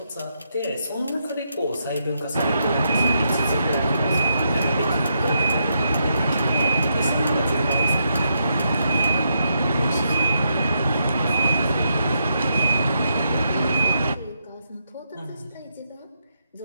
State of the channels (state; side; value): inverted; both; correlation -0.80